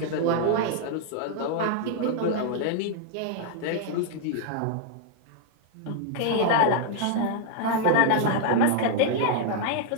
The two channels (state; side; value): different; both; correlation 0.00